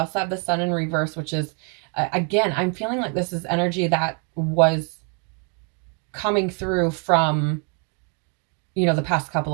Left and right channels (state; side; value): quieter; left; 38.0 dB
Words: have the Sun in reverse, which is, again, I'm feeling like this is energy that was coming through from, the past couple